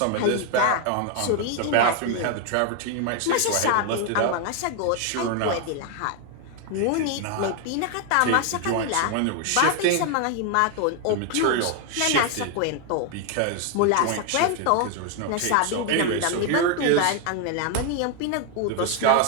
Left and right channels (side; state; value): both; different; correlation 0.01